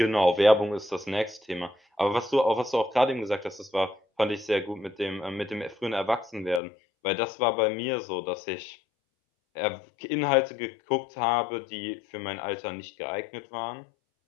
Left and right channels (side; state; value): right; drops out; at 6.6 s